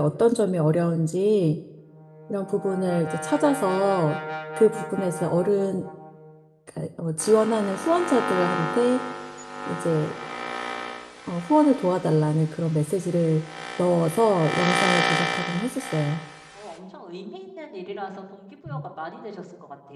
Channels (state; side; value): identical; both; correlation 1.00